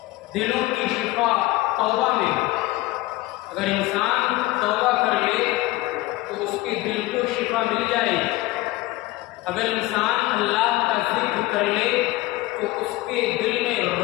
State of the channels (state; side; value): quieter; right; 18.8 dB